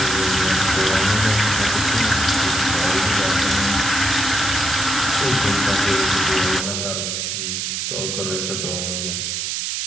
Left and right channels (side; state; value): right; noise; hiss, 2 dB below the sound